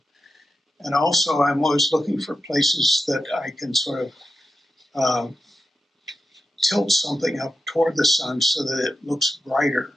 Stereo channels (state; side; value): normal; both; correlation 0.89